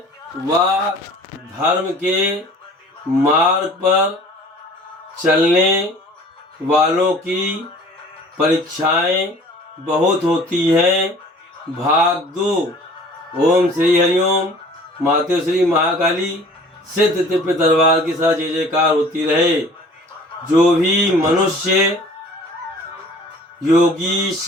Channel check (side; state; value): both; normal; correlation 0.48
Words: व धर्म के मार्ग पर चलने वालों की परीक्षाएं बहुत होती हैं। भाग 2। ओम श्री हरिओम। माते श्री महाकाली सिद्ध दिव्य दरबार के साथ जय जयकार होती रहे। जो भी मनुष्य योगी